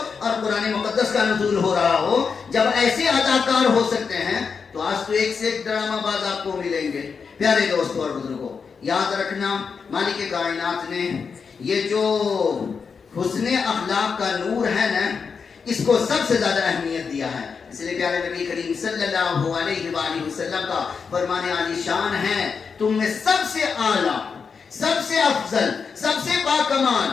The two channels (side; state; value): right; quieter; 5.7 dB